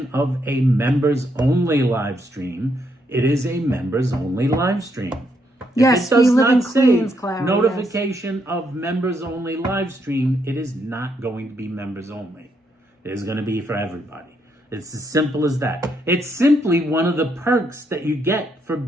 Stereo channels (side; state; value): both; normal; correlation 0.76